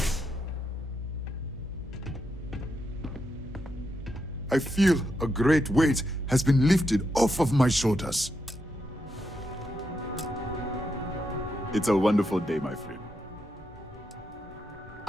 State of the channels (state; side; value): normal; both; correlation 0.82